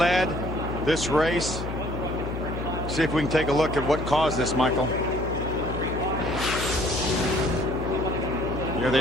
this race. See if we can take a look at what caused this, Michael. Here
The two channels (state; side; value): noise; left; hum, 6 dB below the sound